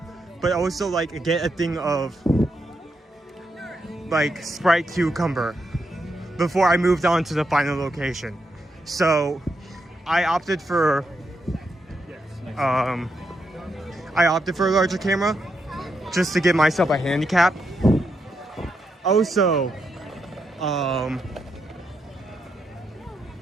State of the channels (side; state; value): both; normal; correlation 0.82